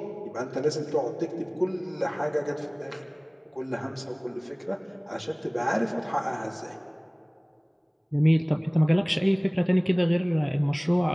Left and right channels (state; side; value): identical; both; correlation 1.00